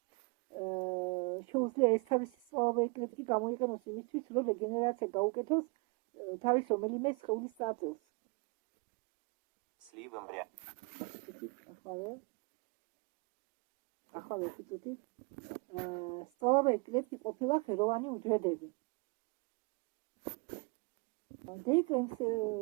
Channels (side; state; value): left; quieter; 30.9 dB